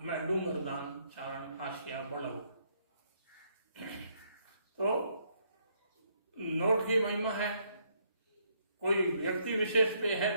मैं डूंगरदान चारण आशिया बड़ऊ। तो नोट की महिमा है, कोई व्यक्ति विशेष पे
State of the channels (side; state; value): both; inverted; correlation -0.71